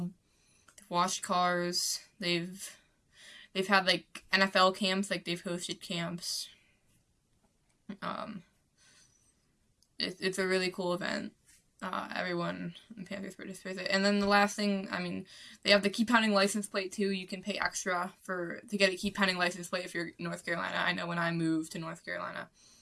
they've washed cars, they've had, like, NFL camps, like, they've hosted camps. It's a really cool event. Everyone in Panthers participates. And then the last thing, I mean, they have the Keep Pounding license plate too. You can pay extra to get a Keep Pounding license plate if you're in North Carolina. I know when I moved to North Carolina,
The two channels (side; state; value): both; identical; correlation 1.00